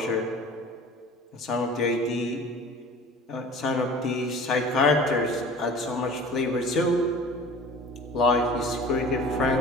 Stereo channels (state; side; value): normal; both; correlation 0.42